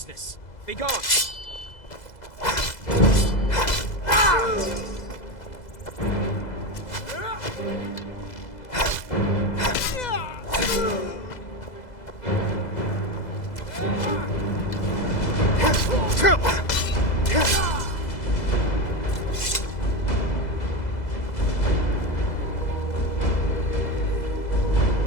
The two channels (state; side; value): late; right; 2.0 ms